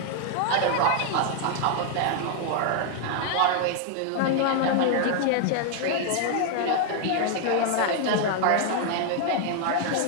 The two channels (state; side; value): different; both; correlation 0.00